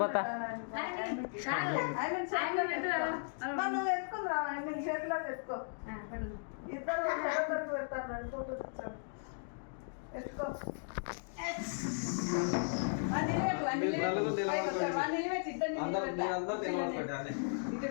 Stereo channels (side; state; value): right; silent; digital silence